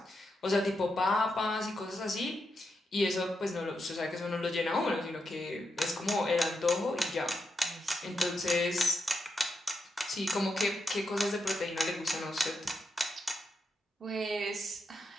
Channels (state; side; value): normal; both; correlation 0.85